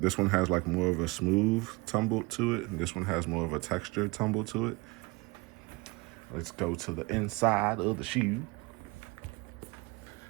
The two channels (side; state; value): left; quieter; 25.3 dB